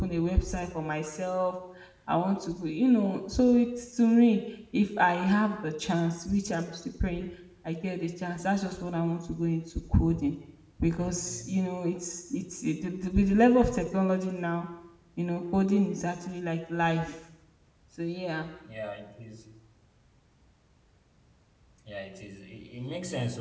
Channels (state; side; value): identical; both; correlation 1.00